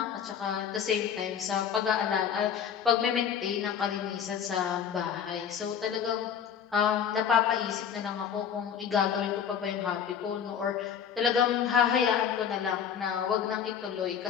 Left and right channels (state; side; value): quieter; right; 8.0 dB